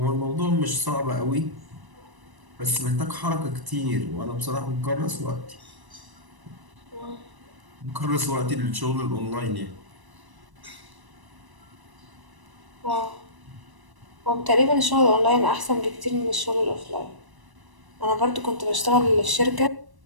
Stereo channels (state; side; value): late; left; 1.0 ms